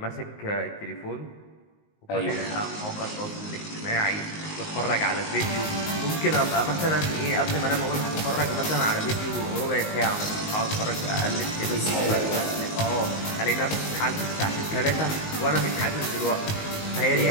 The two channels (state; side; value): late; right; 19 ms